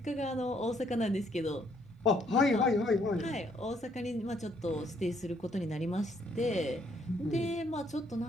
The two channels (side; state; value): both; normal; correlation 0.68